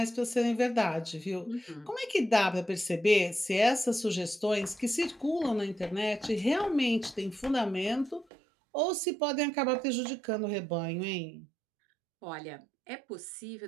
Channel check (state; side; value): drops out; left; at 8.2 s